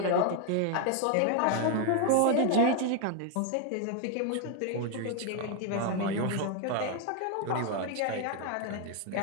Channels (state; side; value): different; both; correlation 0.00